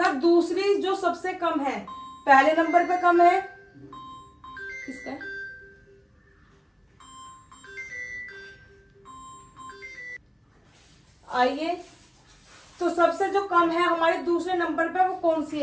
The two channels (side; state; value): both; identical; correlation 1.00